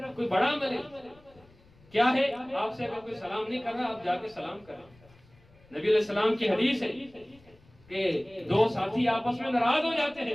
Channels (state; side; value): noise; left; rumble, 28 dB below the sound